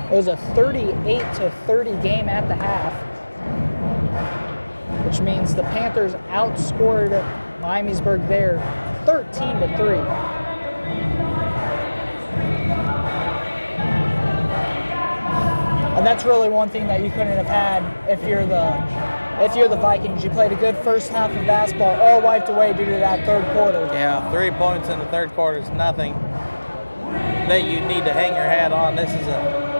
a 38-30 game at the half, which means the Panthers outscored Miamisburg there 13-3. And that's really one thing that you couldn't have had if you're the Vikings. You played a good first half of basketball, all wiped away due to that third quarter. Yeah, 3 points in the third quarter is nothing that you need to hang your hat on. This is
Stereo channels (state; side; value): inverted; both; correlation -1.00